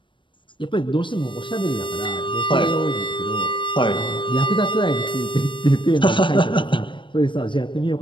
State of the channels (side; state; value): right; late; 0.24 ms